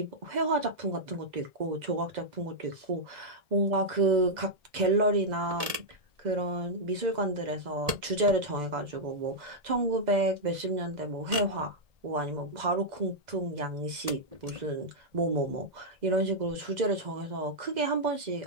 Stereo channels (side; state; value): left; late; 1.8 ms